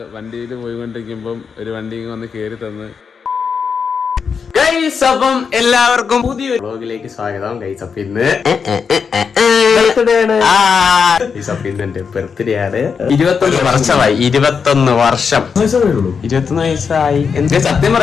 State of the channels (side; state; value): right; quieter; 6.0 dB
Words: വണ്ടിയിൽ പോയിക്കൊണ്ടിരിക്കുമ്പം ഒരു വണ്ടി വന്ന് കേറി തന്ന്. ഗൈസ്, അപ്പം എല്ലാവർക്കും പുതിയൊരു വ്ലോഗിലേക്ക് സ്വാഗതം. ഗൈസ്, അപ്പം ഇന്ന് എന്റെ ബർത്ത്ഡേ ആണ്. 21 വർഷമായി. 21 വർഷം 21 വയസ്സായി. എന്താ സത്യം